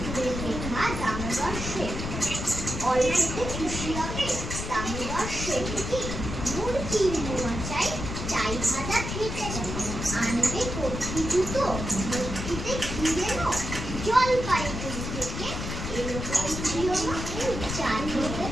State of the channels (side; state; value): left; noise; rumble, 5 dB below the sound